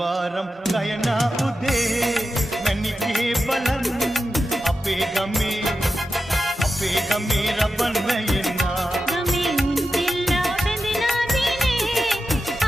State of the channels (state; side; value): normal; both; correlation 0.91